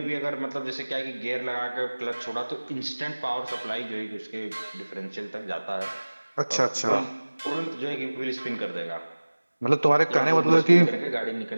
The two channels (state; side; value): inverted; both; correlation -1.00